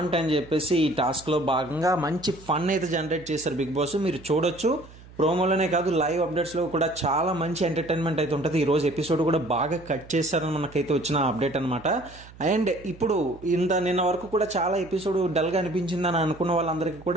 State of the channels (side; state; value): right; noise; hum, 20 dB below the sound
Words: అని చెప్పేసి ఈ టాస్క్ లో భాగంగా మంచి ఫన్ అయితే జనరేట్ చేశారు బిగ్ బాస్. మీరు చూడొచ్చు, ప్రోమోలోనే కాదు లైవ్ అప్డేట్స్ లో కూడా చాలా మంచి ఎంటర్టైన్మెంట్ అయితే ఉంటుంది. ఈ రోజు ఎపిసోడ్ కూడా బాగా కట్ చేశారని మనకైతే వచ్చిన అప్డేట్ అనమాట. అండ్ ఇప్పుడు నిన్న వరకు కూడా చాలా ఎపిసోడ్ డల్ గా అనిపించిందని అనుకున్న వాళ్ళందరికీ